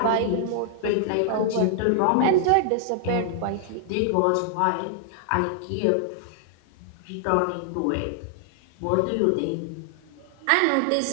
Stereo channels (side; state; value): both; different; correlation 0.00